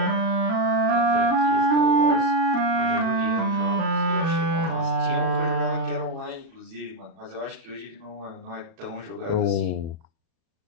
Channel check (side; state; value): left; late; 37 ms